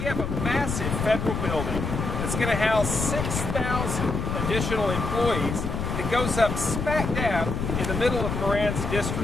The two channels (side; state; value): left; noise; rumble, 3 dB below the sound